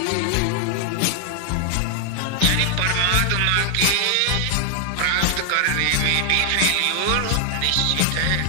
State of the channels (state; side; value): different; both; correlation 0.00